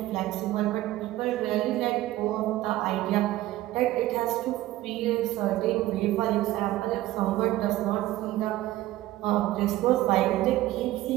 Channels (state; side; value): quieter; left; 15.8 dB